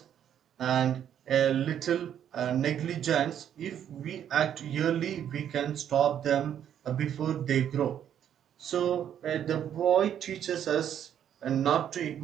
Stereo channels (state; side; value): quieter; left; 9.7 dB